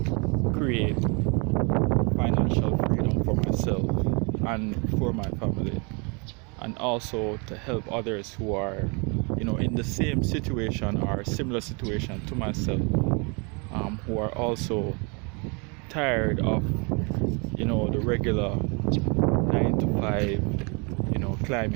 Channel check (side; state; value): left; quieter; 32.7 dB